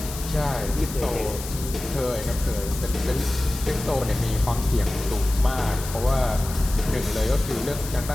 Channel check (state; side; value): noise; left; hiss, 11 dB below the sound